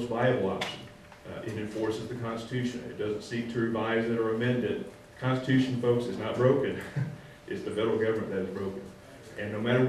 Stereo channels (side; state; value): both; identical; correlation 1.00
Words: viable option. It enforces the Constitution. It doesn't seek to revise it or amend it. The Constitution, folks, is not broken. It's the federal government that is broken. And no matter